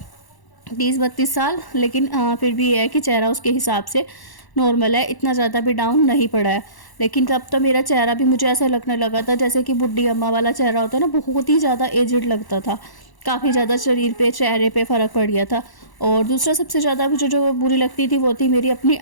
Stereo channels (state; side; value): late; right; 1.0 ms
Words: 30-32 साल, लेकिन फिर भी ये है कि चेहरा उसके हिसाब से नॉर्मल है, इतना ज़्यादा भी डाउन नहीं पड़ा है। लेकिन तब तो मेरा चेहरा भी मुझे ऐसा लगने लगा था जैसे कि बुढ़ी अम्मा वाला चेहरा होता है ना, बहुत ही ज़्यादा एजिड लगता था। काफ़ी ज़्यादा शरीर पे, चेहरे पे फ़र्क पड़ गया था। और दूसरा सबसे ज़्यादा मुझे जो बुरी लगती थी वो थी मेरी अपनी